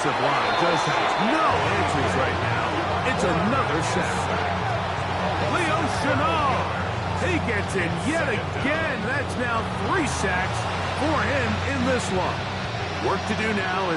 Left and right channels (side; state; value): both; identical; correlation 1.00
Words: line just has no answers right now. It's another sack. Leo Chenal, he gets it yet again. That's now 3 sacks for him in this one. Work to do now